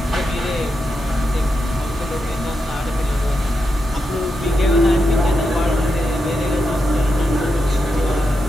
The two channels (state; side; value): normal; both; correlation 0.86